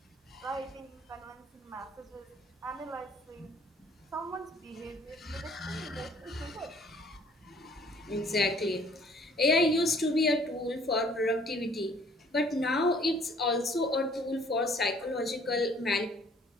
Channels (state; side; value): normal; both; correlation 0.58